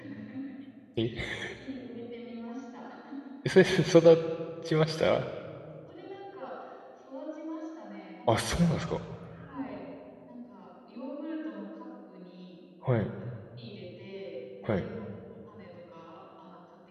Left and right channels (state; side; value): identical; both; correlation 1.00